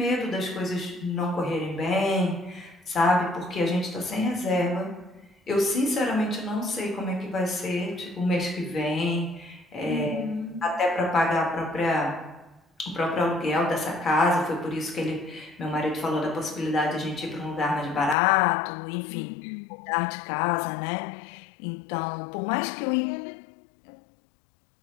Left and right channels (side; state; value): right; drops out; at 18.2 s